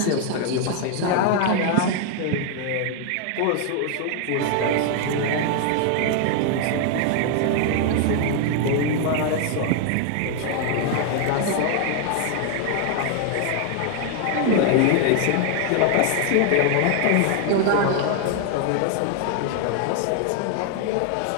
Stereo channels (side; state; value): both; different; correlation 0.00